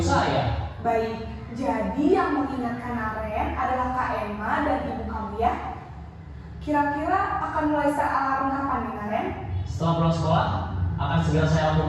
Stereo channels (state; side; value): identical; both; correlation 1.00